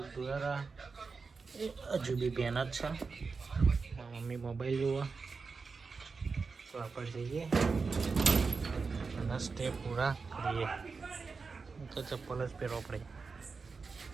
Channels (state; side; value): quieter; left; 4.7 dB